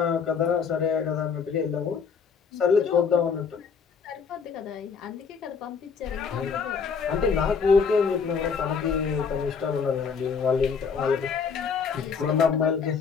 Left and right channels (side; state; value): right; quieter; 5.9 dB